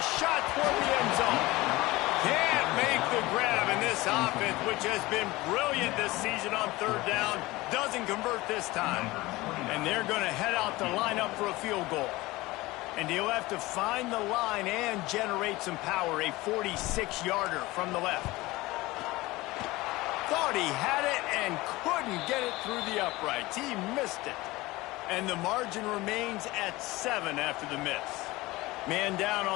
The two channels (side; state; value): right; quieter; 20.1 dB